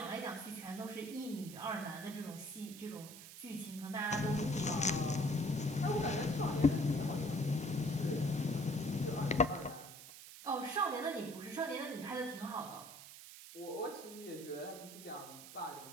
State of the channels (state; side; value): noise; right; hiss, 14 dB below the sound